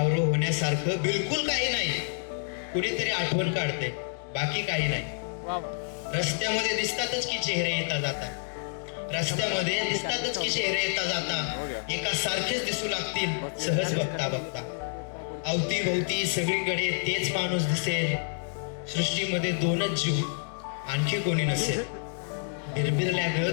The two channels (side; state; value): right; silent; digital silence